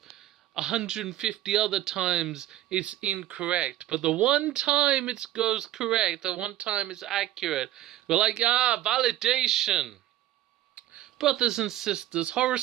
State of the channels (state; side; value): quieter; left; 13.8 dB